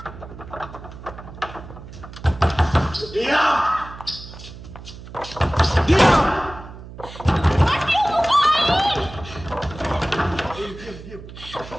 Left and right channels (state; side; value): noise; right; hum, 15 dB below the sound